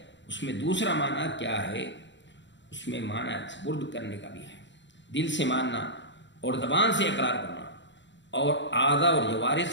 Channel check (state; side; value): late; right; 0.53 ms